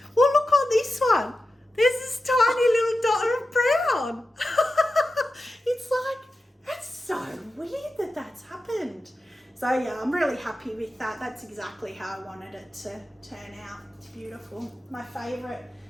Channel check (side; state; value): both; normal; correlation 0.92